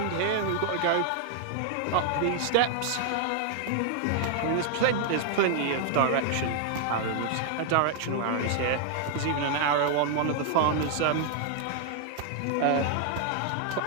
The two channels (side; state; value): both; different; correlation 0.00